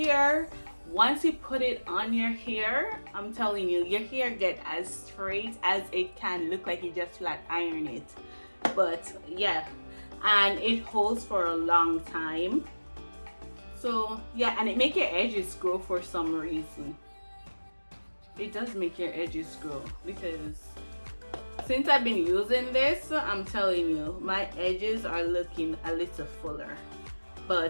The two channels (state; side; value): inverted; both; correlation -1.00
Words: Once you put it on your hair, I'm telling you, your hair get as straight as it can, look like you just flat iron it. But yeah, and it holds for a long time. So yeah, and it make your edges grow for some reason. It does make your edges grow because since I've been using this, I'm telling you, my edges are looking a little fuller.